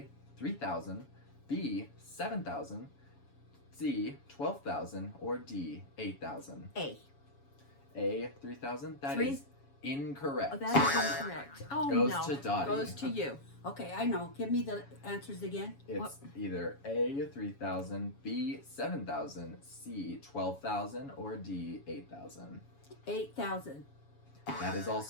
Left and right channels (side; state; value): right; late; 7.2 ms